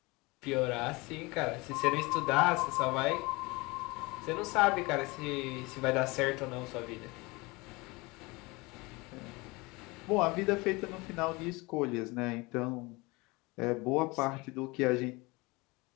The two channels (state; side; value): quieter; right; 24.5 dB